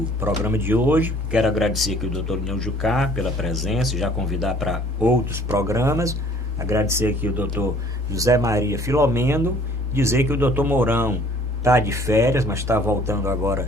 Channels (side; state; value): both; normal; correlation 0.55